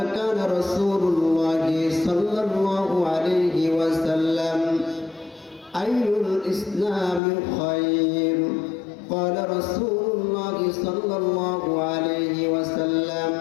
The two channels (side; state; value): right; drops out; at 7.2 s